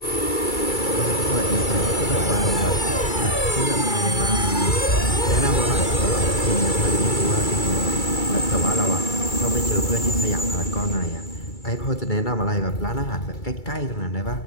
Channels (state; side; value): late; right; 2.3 ms